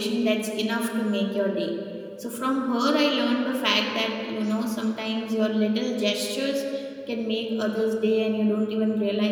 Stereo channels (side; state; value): both; identical; correlation 1.00